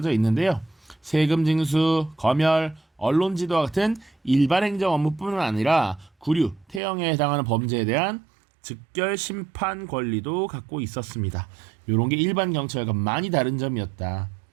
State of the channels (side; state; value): left; drops out; at 6.8 s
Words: 있는데요. 세금 징수, 검열, 언론 지도와 같은 일반 행정 업무뿐만 아니라 구류, 태형에 해당하는 범죄에 대한 즉결 심판 권리도 갖고 있었습니다. 이런 게 일반 경찰과 많이 다른 점이었다.